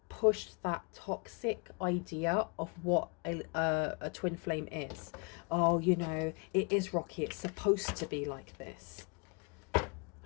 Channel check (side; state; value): right; quieter; 32.3 dB